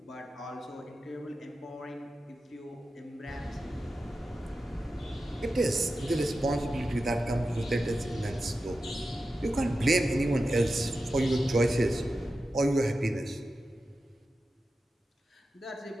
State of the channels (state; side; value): normal; both; correlation 0.92